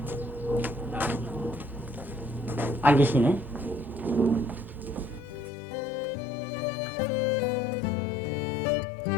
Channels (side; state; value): right; drops out; at 5.5 s